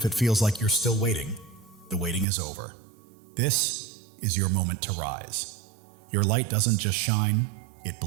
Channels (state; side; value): drops out; left; at 2.2 s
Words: it feels like you're still waiting, the waiting is over. This is your moment to rise. Your light doesn't just shine, it